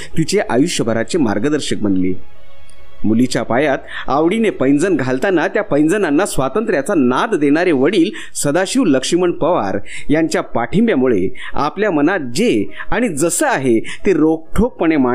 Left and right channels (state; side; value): identical; both; correlation 1.00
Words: तिचे आयुष्यभराचे मार्गदर्शक बनले. मुलीच्या पायात आवडीने पैंजण घालताना त्या पैंजणांना स्वातंत्र्याचा नाद देणारे वडील सदाशिव लक्ष्मण पवार यांच्या पाठिंब्यामुळे आपल्या मनात जे आणि जसं आहे ते रोखठोकपणे